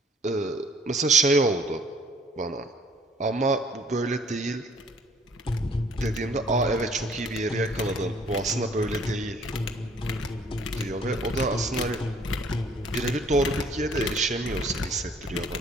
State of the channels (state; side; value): normal; both; correlation 0.58